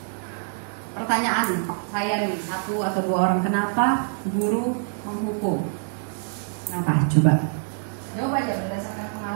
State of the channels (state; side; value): silent; left; 60 dB below the other